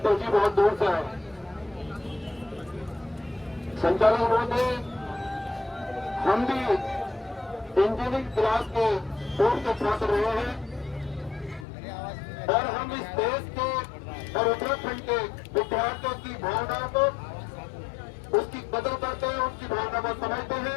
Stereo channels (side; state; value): right; drops out; at 11.7 s